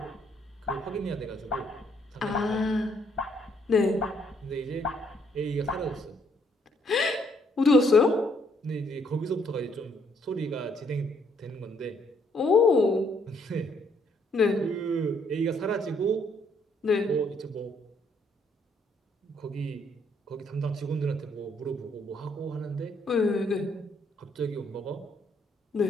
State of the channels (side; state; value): both; normal; correlation 0.69